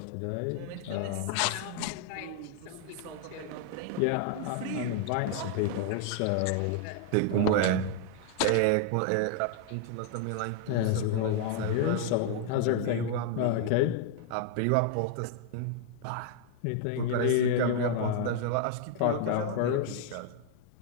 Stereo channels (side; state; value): both; different; correlation 0.00